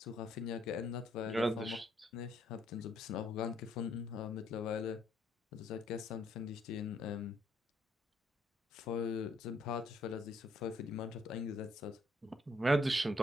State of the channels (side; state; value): both; normal; correlation 0.70